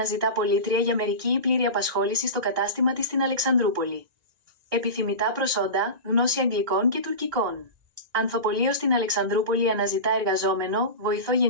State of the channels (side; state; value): left; late; 1.9 ms